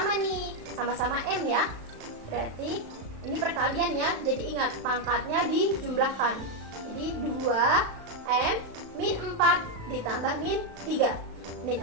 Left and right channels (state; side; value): late; left; 36 ms